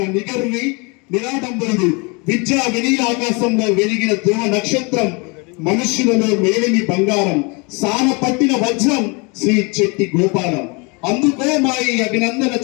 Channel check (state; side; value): quieter; right; 30.0 dB